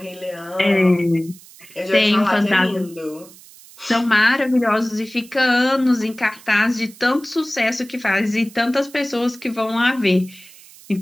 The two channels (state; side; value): noise; right; hiss, 22 dB below the sound